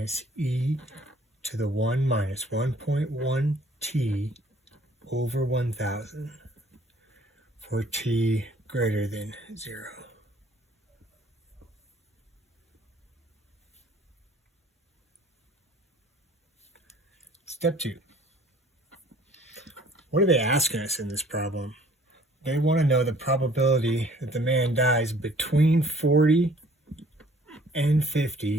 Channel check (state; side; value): normal; both; correlation 0.56